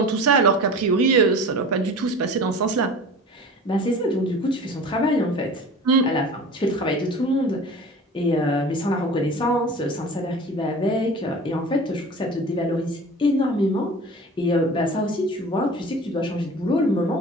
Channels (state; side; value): normal; both; correlation 0.38